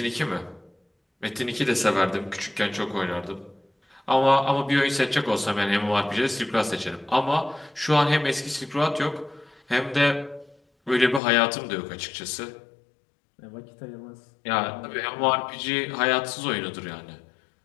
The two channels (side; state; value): right; drops out; at 11.2 s